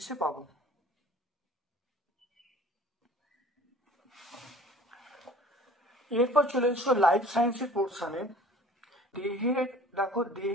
পাবো। এরপর চলে এসো লাইফ সায়েন্সের পোর্শনে।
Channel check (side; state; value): both; normal; correlation 0.47